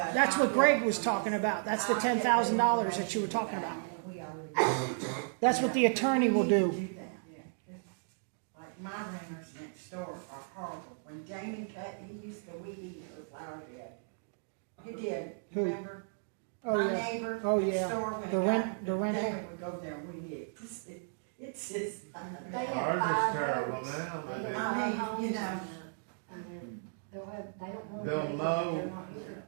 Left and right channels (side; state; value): left; silent; digital silence